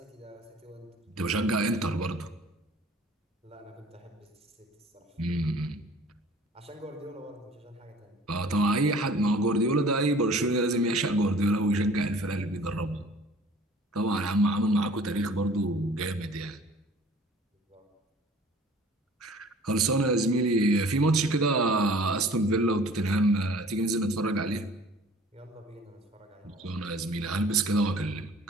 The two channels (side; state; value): both; normal; correlation 0.49